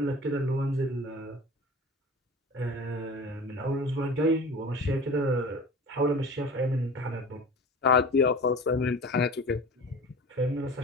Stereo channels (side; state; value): both; normal; correlation 0.38